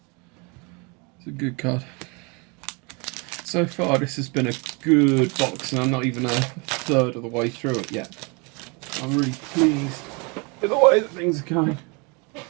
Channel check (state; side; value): quieter; left; 30.4 dB